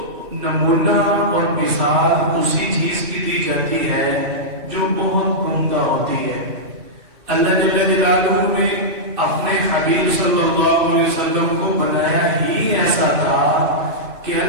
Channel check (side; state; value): left; late; 2.6 ms